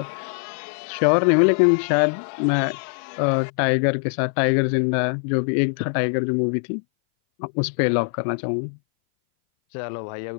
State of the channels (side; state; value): right; silent; 59 dB below the other